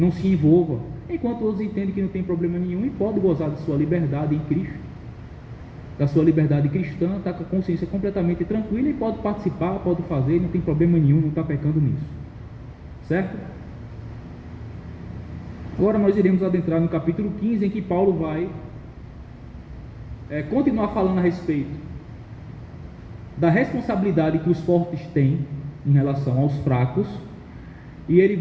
se envolva. Enquanto outros entendem que não tem problema nenhum e pode gozar de sua liberdade em Cristo, da sua liberdade cristã, está com a consciência completamente tranquila e pode participar, pode fazer, não tem problema nenhum, não está pecando nisso. Certo? Agora nós iremos adentrar no capítulo 15, em que Paulo vai continuar falando a respeito da responsabilidade que os fortes têm em relação aos fracos, e ele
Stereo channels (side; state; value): both; identical; correlation 1.00